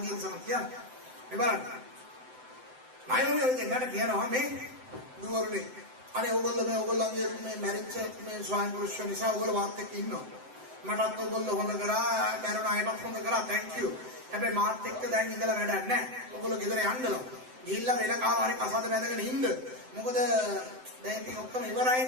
ගිහින් සම කියන්න. මේ බලන්න. අයෝමි ඉතින් ගන්න කියනවා මේ දුවරුනේ. අනේ ඔයගොල්ලන්ගේ මේ මැරිච්ච මේ ස්වාමි පුරුෂයෝ නිසා ඔයගොල්ලෝ මාත් එක්ක ඉන්නවා. මටත් ඔයගොල්ලෝ හොඳ කරා, මරණ අයටත් හොඳ කරා. thank you. හැබැයි මාත් එක්ක දැන් ඉඳලා වැඩක් නැහැ. ඔයගොල්ලෝ ගෙදර යන්නලු. ගිහිල්ලා වෙන කාමාරේ කසාද බැඳගෙන ඉන්න. මොකද දැන් ඉතින් ඔක්කොම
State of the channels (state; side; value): late; left; 7.8 ms